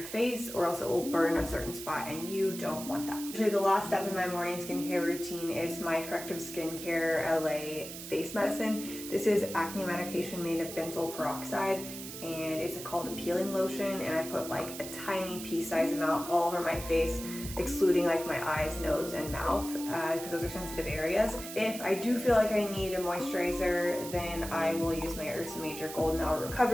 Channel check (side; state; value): right; noise; hiss, 10 dB below the sound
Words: face, or else it will burn a certain spot, and you don't want that. Usually the last step in my morning skincare routine is my Corrective Skincare LA face medicine. This is acne medication made of benzoyl peroxide, and it's called a peeling lotion, and I put like a tiny pea-sized amount all over my face, excluding like my eyes, nose, and mouth, because those are sensitive areas. If I do feel like I need a moisturizer, then I will use my Ursa Major Golden Hour